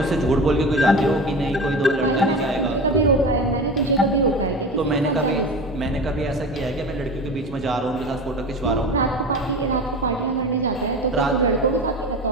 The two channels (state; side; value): normal; both; correlation 0.30